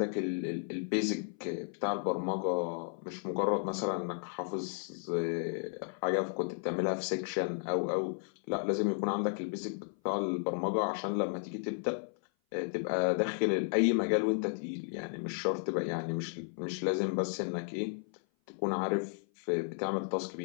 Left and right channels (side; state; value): right; silent; 55 dB below the other